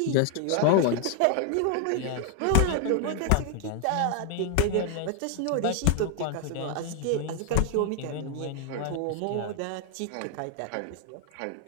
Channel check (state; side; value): different; both; correlation 0.00